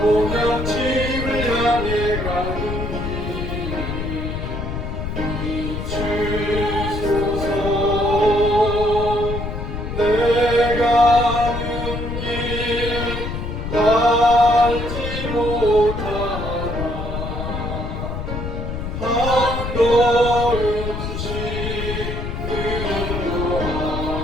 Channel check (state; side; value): noise; left; rumble, 5 dB below the sound